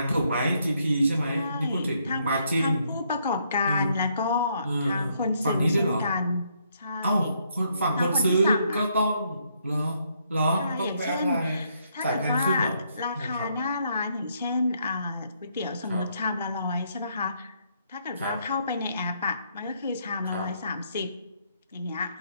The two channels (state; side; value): inverted; both; correlation -0.72